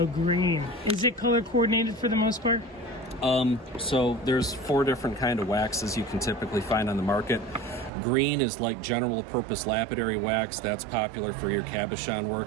green. Is it color coordinated for the most part? So there's 4 different kind of waxes you can typically find on the market. Green is like general purpose lapidary wax. That's popular for your cabochon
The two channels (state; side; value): drops out; left; at 7.9 s